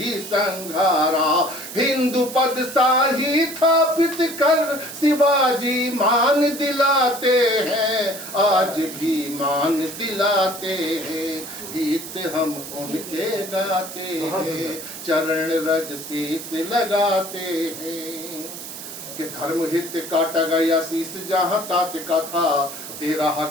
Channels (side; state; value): right; noise; hiss, 11 dB below the sound